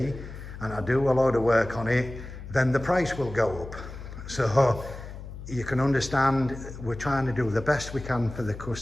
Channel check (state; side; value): noise; left; hum, 12 dB below the sound